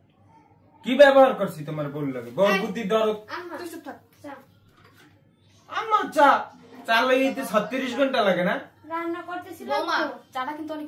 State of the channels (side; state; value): both; identical; correlation 1.00